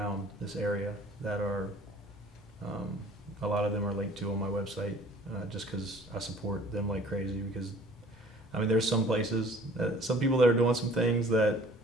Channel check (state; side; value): normal; both; correlation 0.51